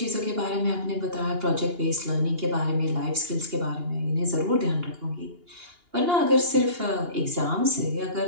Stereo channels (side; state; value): left; late; 2.8 ms